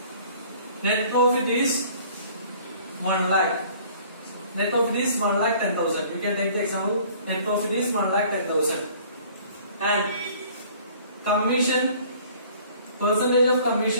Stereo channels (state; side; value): inverted; both; correlation -0.53